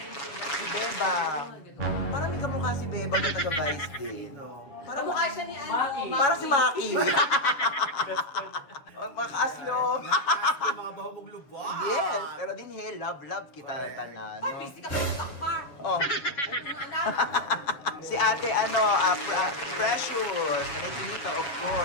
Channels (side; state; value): right; late; 7.1 ms